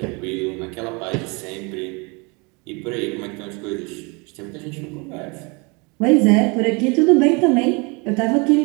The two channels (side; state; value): left; quieter; 29.6 dB